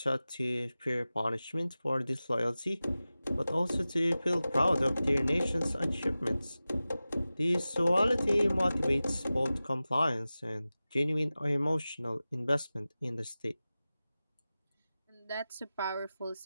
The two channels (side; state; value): both; inverted; correlation -0.96